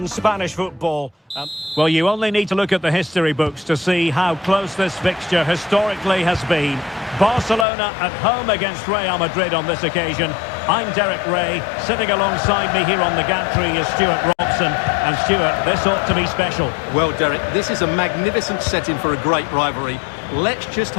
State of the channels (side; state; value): right; drops out; at 7.7 s